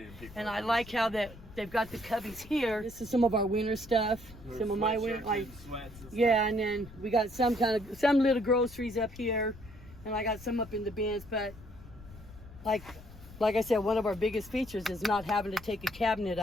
and people. And I like how they've got the cubbies here. This is some of our winter stuff. Some of my winter, and then we got some little groceries up here, and I got some up in the bins. But like I said, one of our biggest features is not having to take a cabinet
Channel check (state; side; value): noise; left; rumble, 19 dB below the sound